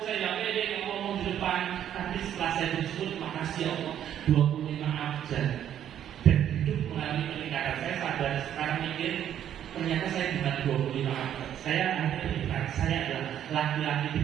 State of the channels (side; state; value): left; quieter; 10.3 dB